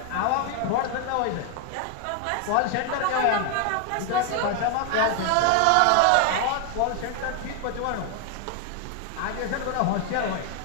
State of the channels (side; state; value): both; different; correlation 0.00